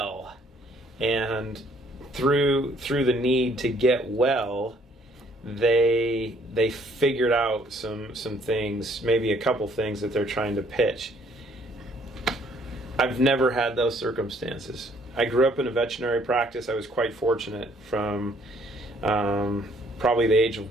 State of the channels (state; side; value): normal; both; correlation 0.63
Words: and through the need to get well, they figured out some things, maybe a couple things that they're trying to pitch. I've never had those circumstances. I grew up in a veterinary practice. I was quite fortunate from probably the age